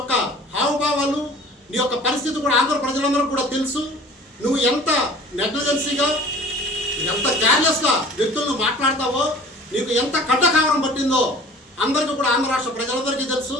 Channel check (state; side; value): normal; both; correlation 0.46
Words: హావభావాలు, నీ యొక్క పరిస్థితి కూడా ఆంధ్ర ప్రజలందరూ కూడా తెలుసు. నువ్వు ఎంత నెగ్లిజెన్సీగా, ఎంత కేర్లెస్గా వ్యక్తులను మాట్లాడతావో, నీకు ఎంత కట్టకావరం పట్టిందో అందరికీ కూడా ఆంధ్ర రాష్ట్ర ప్రజలందరికీ తెలుసు.